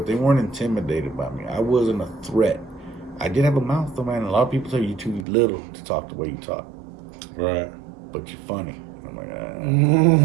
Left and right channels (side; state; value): left; drops out; at 5.2 s